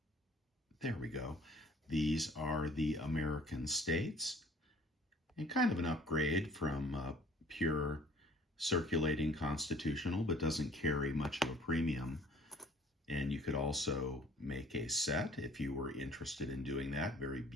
there we go. These are the American states, and kind of an upgrade from pure circulating constitutional, but doesn't carry much of a premium. And you could also make a set if you were interested in doing that. Very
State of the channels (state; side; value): normal; both; correlation 0.53